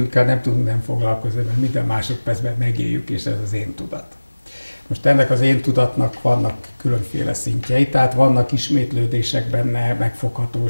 nem tudunk nem foglalkozni, mert minden másodpercben megéljük, és ez az én tudat. Most ennek az én tudatnak vannak különféle szintjei, tehát vannak ismétlődések benne,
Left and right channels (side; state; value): both; inverted; correlation -1.00